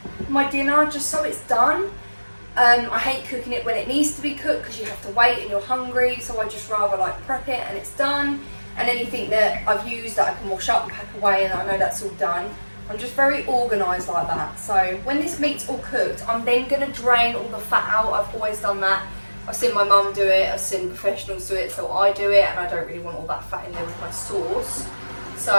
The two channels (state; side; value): inverted; both; correlation -1.00